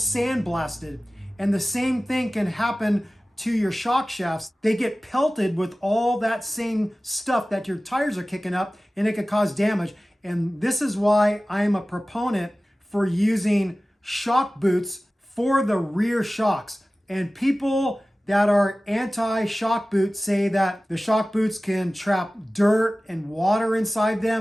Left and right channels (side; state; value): both; normal; correlation 0.97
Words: And the same thing can happen to your shock shafts. They get pelted with all that same stuff that your tires are kicking up, and it could cause damage. And this is why I am a proponent for using shock boots for the rear shocks. And people that are anti-shock boots say that the shock boots can trap dirt and water inside